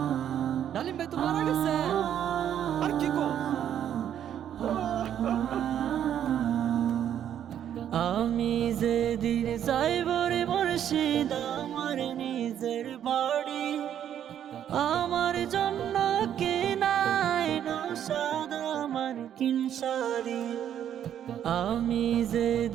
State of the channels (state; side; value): quieter; left; 9.9 dB